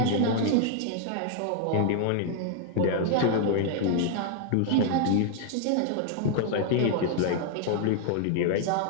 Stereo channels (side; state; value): both; different; correlation 0.00